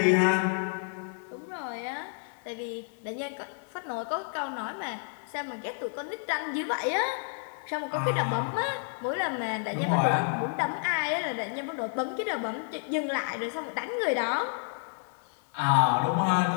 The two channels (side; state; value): right; silent; 58 dB below the other